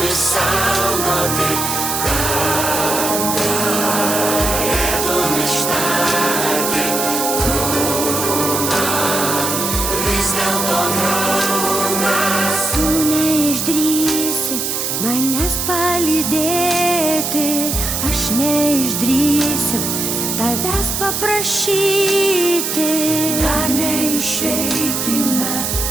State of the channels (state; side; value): noise; right; hiss, 1 dB below the sound